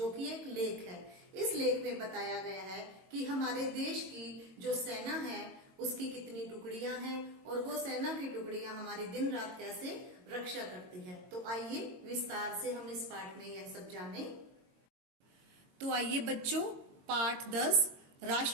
कि एक लेख है। इस लेख में बताया गया है कि हमारे देश की जो सेना है उसकी कितनी टुकड़ियां हैं और वो सेना की टुकड़ियां हमारी दिन रात कैसे रक्षा करती है। तो आइए विस्तार से हम इस पाठ में यह सब जाने। तो आइए बच्चों, पाठ 10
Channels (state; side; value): late; left; 22 ms